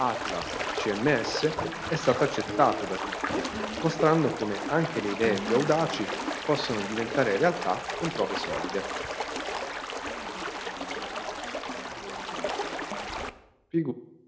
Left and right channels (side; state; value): both; identical; correlation 1.00